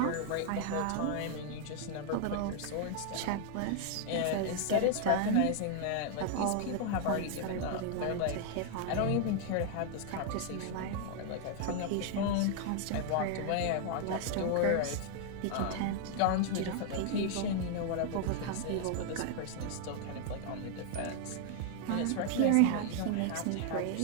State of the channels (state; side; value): different; both; correlation 0.00